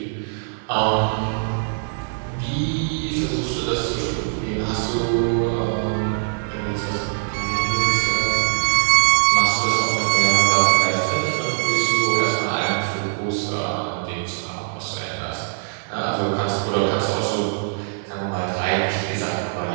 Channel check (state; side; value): silent; left; 55 dB below the other